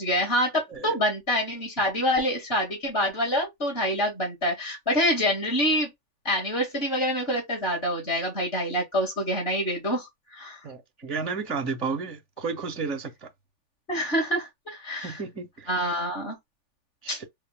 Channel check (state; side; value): late; right; 3.4 ms